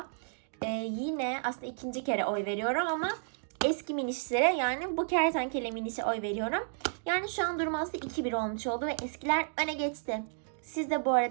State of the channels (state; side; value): silent; left; digital silence